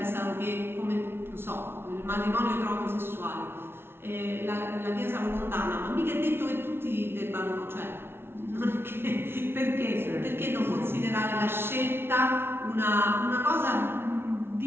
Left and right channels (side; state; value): left; late; 0.11 ms